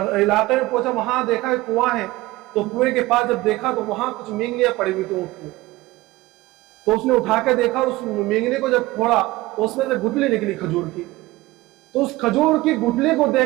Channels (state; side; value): quieter; left; 19.3 dB